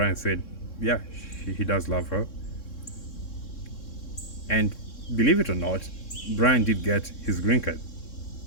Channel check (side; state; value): right; late; 3.6 ms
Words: said, yeah, he does love her. And believe it or not, Brian did get his green card